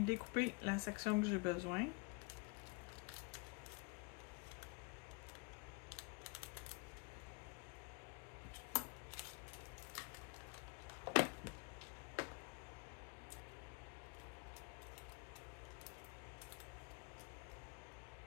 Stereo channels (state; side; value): quieter; right; 31.2 dB